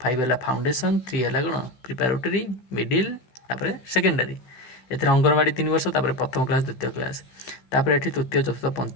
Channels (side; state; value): right; late; 16 ms